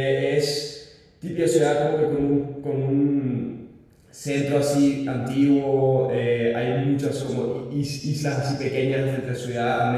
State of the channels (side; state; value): both; identical; correlation 1.00